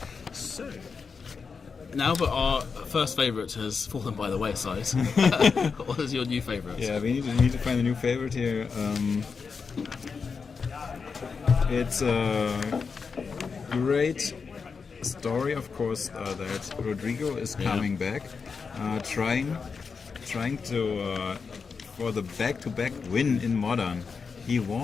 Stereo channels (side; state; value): right; quieter; 5.3 dB